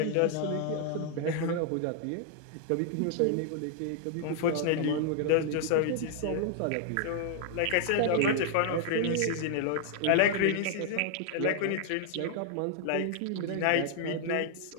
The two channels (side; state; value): both; different; correlation 0.00